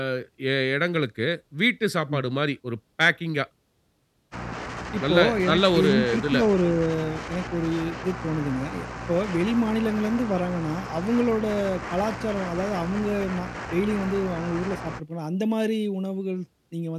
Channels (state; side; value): identical; both; correlation 1.00